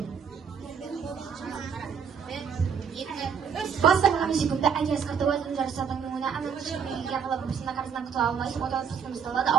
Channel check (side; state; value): left; quieter; 6.9 dB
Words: Баста ками секунда әкес қыртуатын жарысатын мұңына анын шықпеге қалап бірсіна қарызынан құтыла алмайсың, оталы тұстымыз талады,